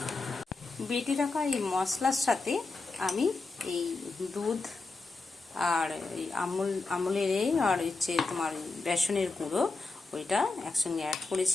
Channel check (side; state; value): right; quieter; 3.7 dB